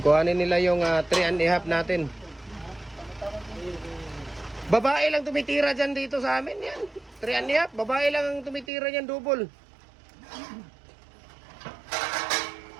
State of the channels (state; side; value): drops out; left; at 8.7 s